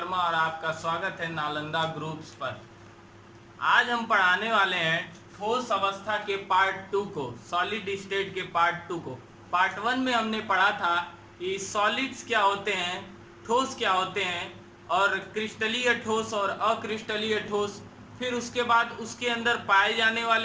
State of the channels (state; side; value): identical; both; correlation 1.00